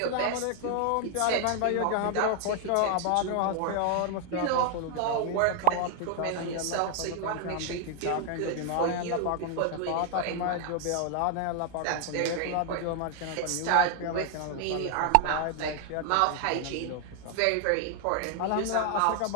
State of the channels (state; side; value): different; both; correlation 0.00